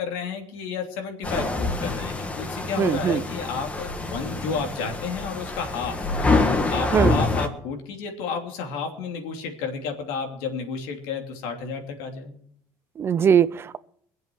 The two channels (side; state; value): both; normal; correlation 0.54